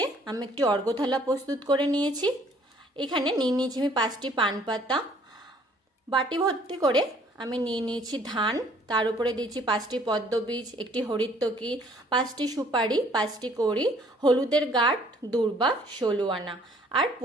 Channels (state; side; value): normal; both; correlation 0.59